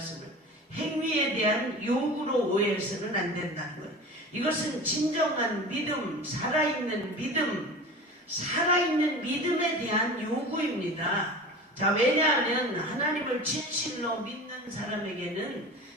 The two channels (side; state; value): both; normal; correlation 0.35